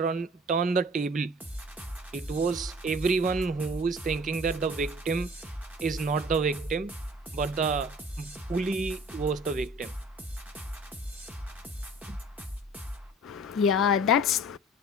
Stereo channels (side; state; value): both; normal; correlation 0.48